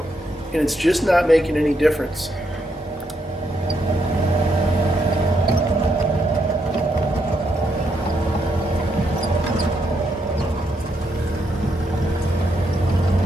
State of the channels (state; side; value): normal; both; correlation 0.78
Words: and it's just not making any difference.